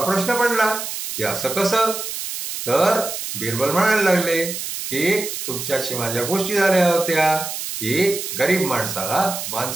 प्रश्न पडला की असं कसं. तर बिरबल म्हणायला लागले की तुमच्याशी माझ्या गोष्टी झाल्या होत्या की गरीब माणसाला मान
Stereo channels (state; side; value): noise; right; hiss, 6 dB below the sound